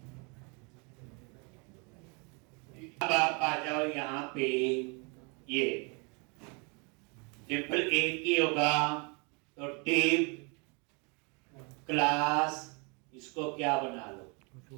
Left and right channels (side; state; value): left; quieter; 32.8 dB